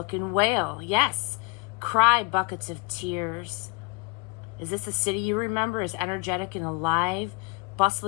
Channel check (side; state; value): right; quieter; 27.9 dB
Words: and wail. Yes, cry buckets of tears. Is this the city you remember as energetic and alive,